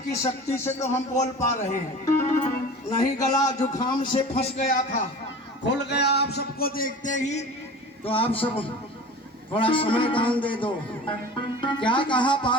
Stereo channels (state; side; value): normal; both; correlation 0.38